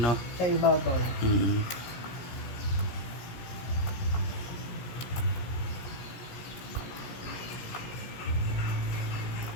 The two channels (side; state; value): right; late; 17 ms